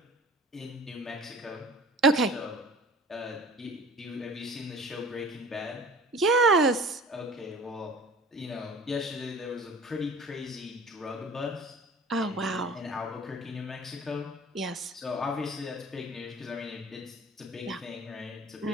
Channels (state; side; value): normal; both; correlation 0.43